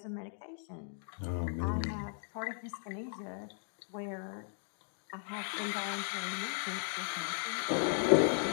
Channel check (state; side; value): silent; right; digital silence